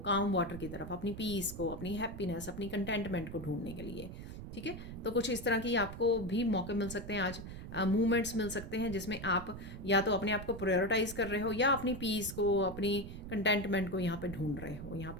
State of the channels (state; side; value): noise; right; rumble, 10 dB below the sound